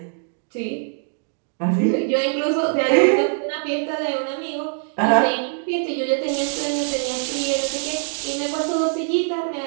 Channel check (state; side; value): silent; left; 64 dB below the other